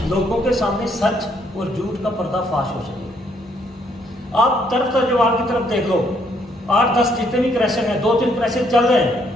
लोगों के सामने सच और झूठ का पर्दाफाश हो सके। आप तर्क तजवाल की तरफ देख लो, 8-10 जितने भी क्रशर हैं, 2-3 क्रशर चल रहे हैं।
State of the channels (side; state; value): both; normal; correlation 0.70